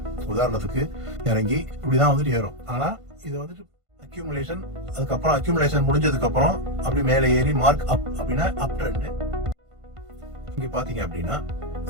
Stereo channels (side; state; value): left; late; 1.5 ms